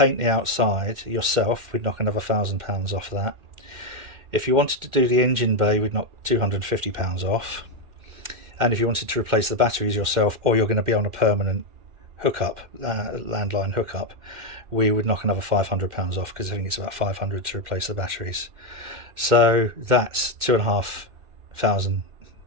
the outside yourself, we'd knock another £1,000 off that. If you wanted to do the engine bay, we'd knock £250 off. And if you wanted to replace the batteries yourself, or you're going to be on a permanent hookup, landline hookup, we would knock another £500 off, because I think it's about £500 to replace the batteries. So that's £2,500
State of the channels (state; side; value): late; left; 2.1 ms